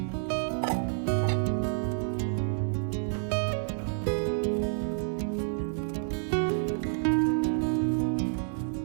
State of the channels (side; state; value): left; silent; digital silence